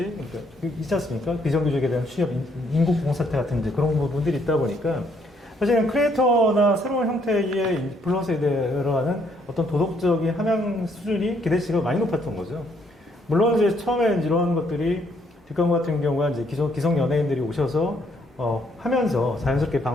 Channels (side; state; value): both; normal; correlation 0.70